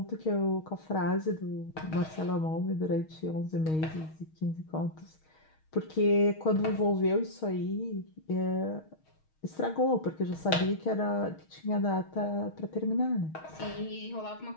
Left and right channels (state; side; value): late; right; 6.4 ms